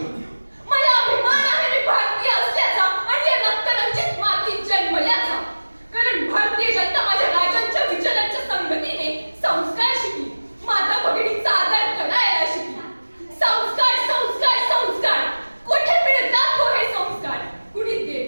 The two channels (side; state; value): both; inverted; correlation -1.00